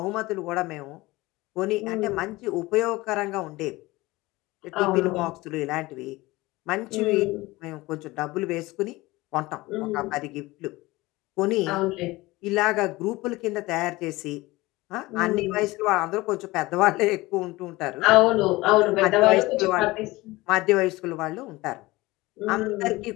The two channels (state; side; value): quieter; right; 20.4 dB